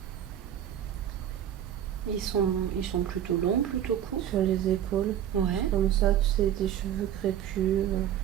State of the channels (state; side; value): quieter; left; 10.4 dB